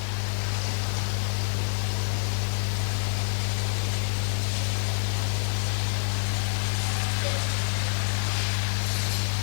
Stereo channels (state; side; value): silent; right; digital silence